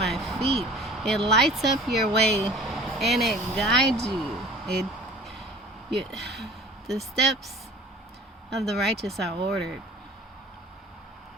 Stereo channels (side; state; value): both; normal; correlation 0.46